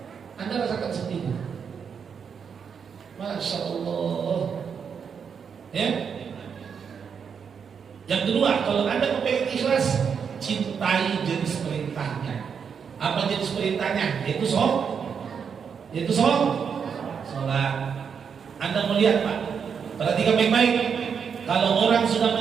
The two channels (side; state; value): left; quieter; 6.7 dB